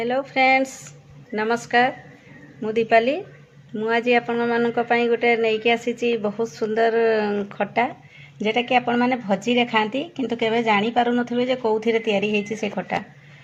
friends नमस्कार मु दीपाली मु आज आपण मानक पई गोटे नेकी आसीची बहुत सुंदर खट्टा जेटा कि आपण माने भजी रे खांती किंतु केबे जानि पारु नथिबे जे कोउथिरे तयारी हेची से खट्टा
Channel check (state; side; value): identical; both; correlation 1.00